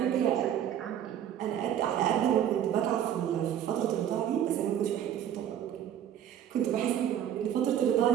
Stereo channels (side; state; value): left; quieter; 10.2 dB